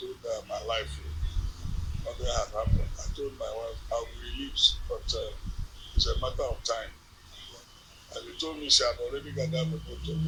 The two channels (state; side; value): identical; both; correlation 1.00